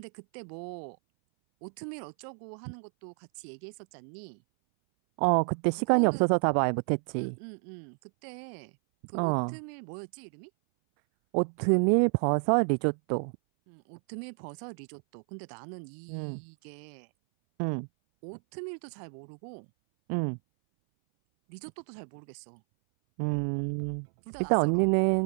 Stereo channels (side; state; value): left; silent; 57 dB below the other